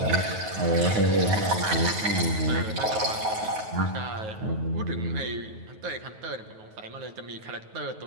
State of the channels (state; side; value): late; left; 9.3 ms